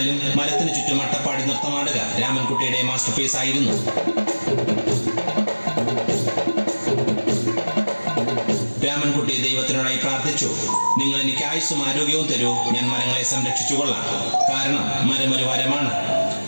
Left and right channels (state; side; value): inverted; both; correlation -1.00